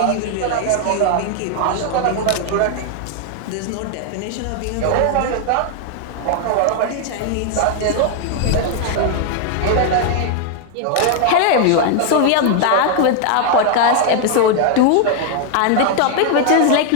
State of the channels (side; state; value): both; different; correlation 0.00